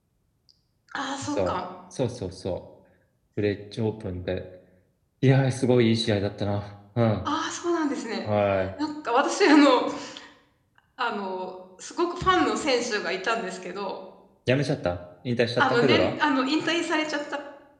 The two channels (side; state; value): both; identical; correlation 1.00